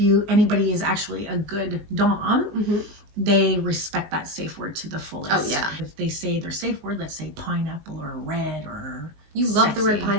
anybody is actually a good dom, they respect that safe word to the fullest. Oh yeah. If they say their safe word, let's say pineapple or red or you love sexy. The word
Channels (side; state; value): left; late; 19 ms